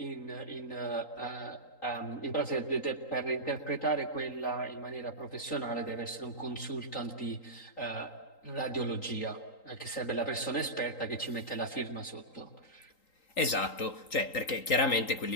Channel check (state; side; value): late; right; 3.8 ms